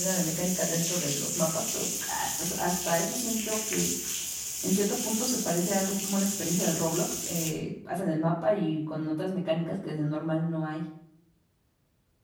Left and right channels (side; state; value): both; identical; correlation 1.00